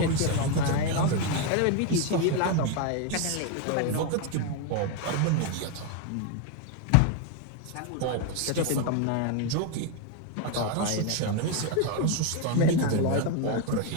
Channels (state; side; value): different; both; correlation 0.01